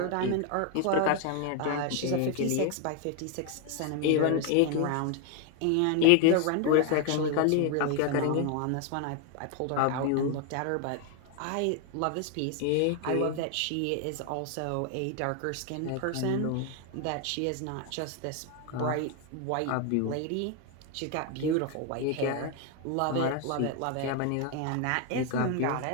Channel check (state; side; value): different; both; correlation 0.00